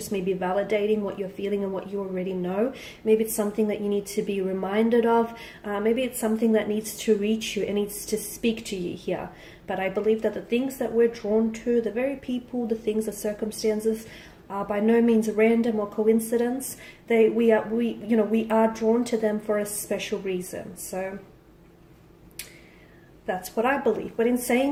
maybe validating what you're feeling and what you already know. Maybe it's something that you need to be reminded of. Maybe it's something that needs to reach you and needs to speak to you here. But I believe that the things that we're drawn to, the very people, the things, the circumstances, are by no means random or coincidence. We are drawn to them for a special reason. So that's what I believe. But in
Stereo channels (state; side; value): identical; both; correlation 1.00